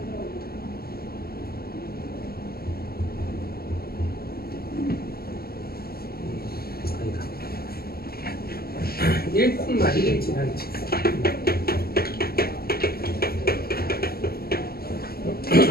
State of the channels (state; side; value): late; right; 0.45 ms